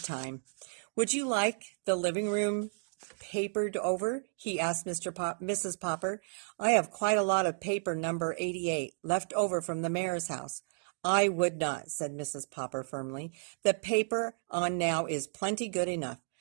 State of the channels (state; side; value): silent; left; digital silence